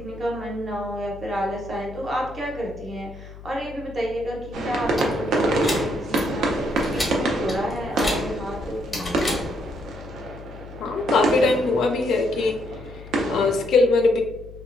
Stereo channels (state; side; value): noise; left; hum, 16 dB below the sound